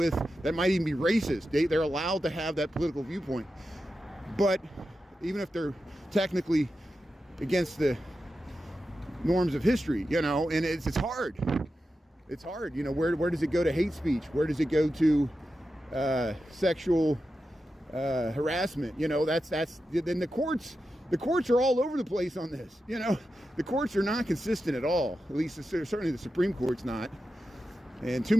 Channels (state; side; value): normal; both; correlation 0.90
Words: that might even be racist. They're allowed to have that political viewpoint. But even if they're technically against the norms of history, you know, and it's hard. It's hard, you know. Where does it go to hate speech? Where does it go to sexual harassment? You know, that's then the courts are all over the place on this. You know, the courts are not consistent at all. At least certainly the Supreme Court's not. And too